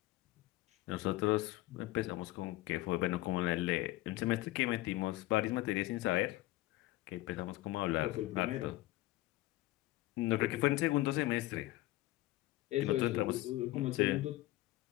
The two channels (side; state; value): right; quieter; 17.6 dB